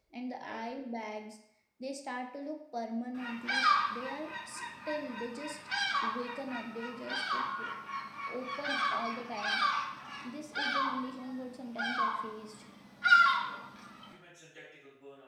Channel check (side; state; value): both; identical; correlation 1.00